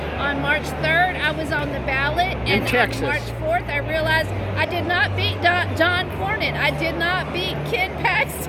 On March 3rd, I was on the ballot. In Texas. On March 4th, I realized I did not beat John Cornyn. I did not beat Ken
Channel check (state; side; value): identical; both; correlation 1.00